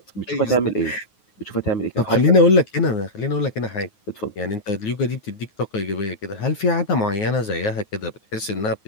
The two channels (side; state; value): right; late; 9.5 ms